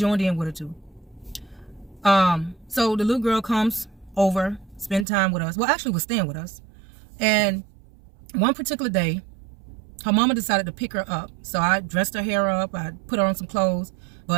in with her too. So the little girl comes over, spend time with us. Well, actually was staying with us. And one particular day, her mama decided to pick her up. So I dressed her hair up, I put her on some clothes.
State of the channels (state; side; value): drops out; left; at 5.1 s